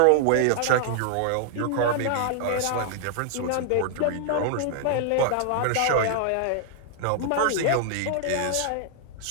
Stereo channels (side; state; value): both; different; correlation -0.01